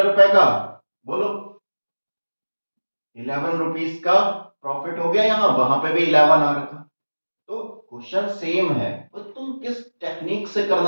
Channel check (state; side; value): inverted; both; correlation -1.00